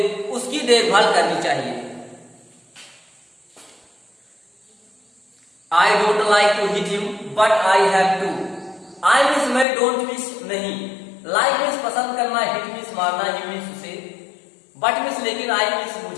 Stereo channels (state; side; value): drops out; right; at 9.7 s